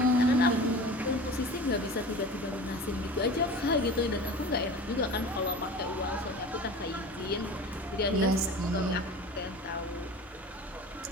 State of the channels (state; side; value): normal; both; correlation 0.37